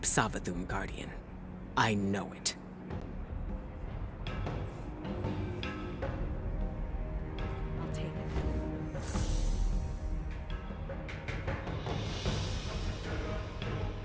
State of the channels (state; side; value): identical; both; correlation 1.00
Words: Savathun, Guardian. I know it.